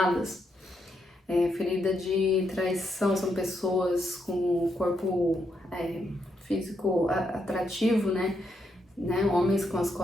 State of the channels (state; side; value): normal; both; correlation 0.79